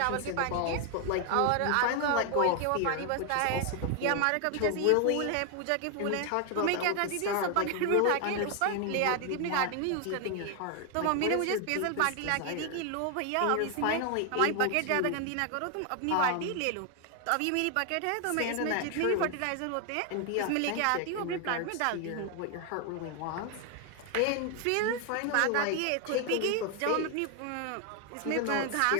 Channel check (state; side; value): different; both; correlation 0.01